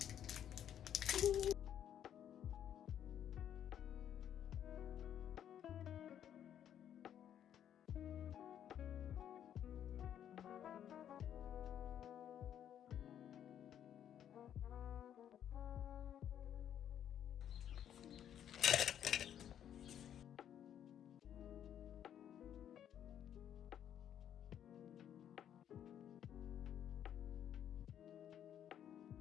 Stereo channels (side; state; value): right; quieter; 9.9 dB